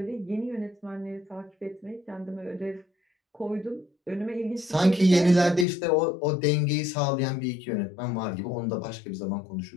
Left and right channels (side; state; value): right; drops out; at 5.7 s